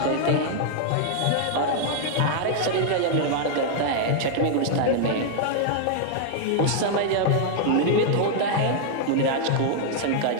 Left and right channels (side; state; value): both; different; correlation 0.00